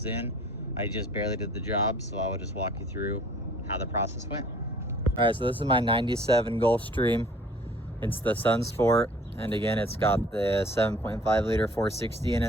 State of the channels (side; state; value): both; normal; correlation 0.52